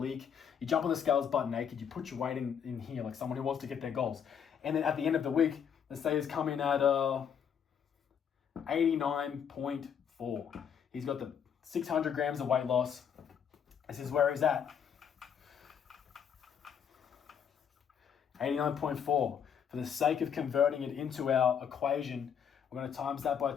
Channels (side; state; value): right; quieter; 7.8 dB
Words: you jump on the scales butt naked, you put your weight in here like someone who wants to get their goals. And then at the end of the week, let's say he's coming at 89.4. He's got the 600 grams of weight loss. This is where he's at. 89.4. For the sake of converting it into our equation, we're going to times that by